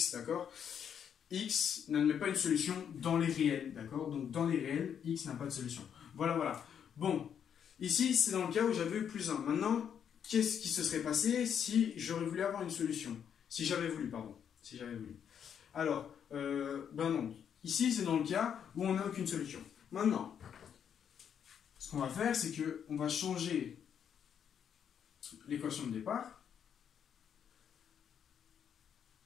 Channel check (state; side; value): quieter; right; 8.3 dB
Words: d'accord? X n'admet pas une solution dans les réels, d'accord? Donc, dans les réels, x n'a pas de solution. Voilà, voilà. Bon, Ici, c'est dans le cas où j'avais eu plus 1. Maintenant, qu'est-ce qui se serait passé si j'aurais voulu avoir une solution? Si j'avais voulu, pardon. Si j'avais voulu. Alors, ben non. Ici, c'est dans le cas où on n'a aucune solution. Maintenant, ce qu'on va faire, c'est qu'on va changer l'équation de départ.